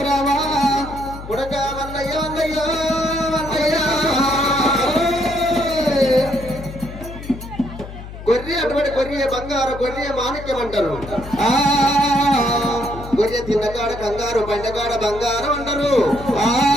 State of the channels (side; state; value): left; noise; hum, 12 dB below the sound